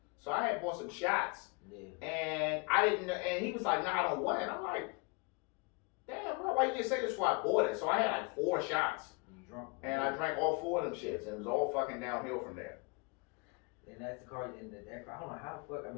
So I had bought some shots, and I didn't. And he was like, nah, I don't want it. And I'm like, damn, bro, why you didn't say this before I bought it? So I had like 4 shots. Drunk. And I drank all 4 of them shits, and it was all fucking downhill from there. And that's the car in that car. I don't know how the fuck. I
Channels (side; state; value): right; quieter; 30.7 dB